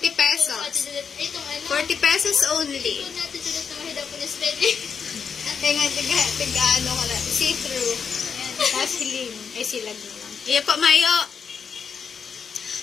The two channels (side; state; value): right; quieter; 6.4 dB